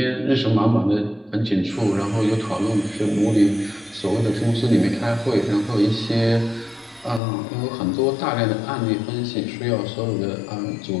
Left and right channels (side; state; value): right; drops out; at 7.2 s